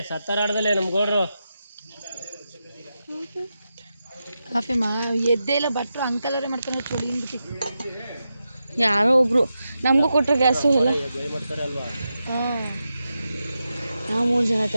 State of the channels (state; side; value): inverted; both; correlation -0.89